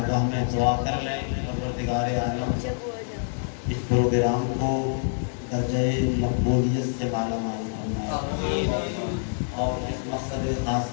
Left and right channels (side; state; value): right; silent; digital silence